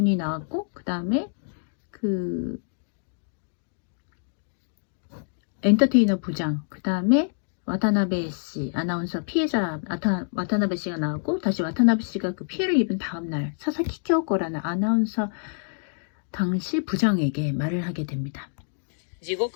나왔고 그 다음에 그 엔터테이너 부장, 그 다음에 와타나베 씨, 아나운서 피해자 와타나베 씨가 나왔고 다시 와타나베 씨가 그 피해를 입은 다음 날 사사키 쿄코라는 아나운서 당시 부장에게 말을 하게 됩니다. 地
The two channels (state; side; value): silent; right; 61 dB below the other